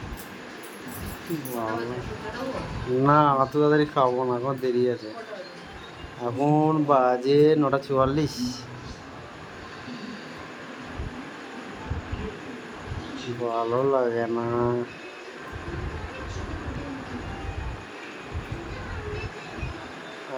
না, অত তাড়াতাড়ি খাবো না, এখন দেরি আছে। এখন বাজে 9:44। ভালো লাগে না,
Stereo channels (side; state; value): both; identical; correlation 1.00